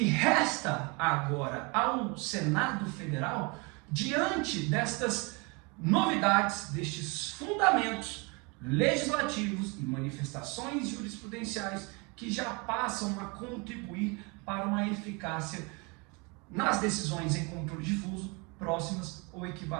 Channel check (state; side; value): quieter; left; 29.8 dB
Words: resta agora ao Senado Federal diante destas novidades, destes fundamentos legislativos e manifestações jurisprudenciais que já passam a contribuir para uma eficácia nas decisões em controle difuso próximas ou